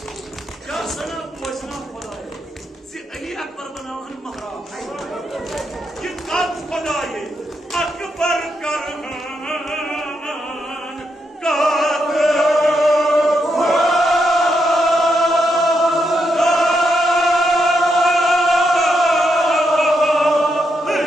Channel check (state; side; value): normal; both; correlation 0.81